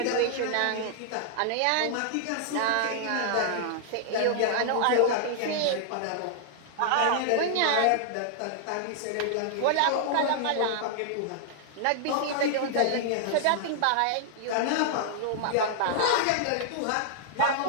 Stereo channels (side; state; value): both; different; correlation -0.01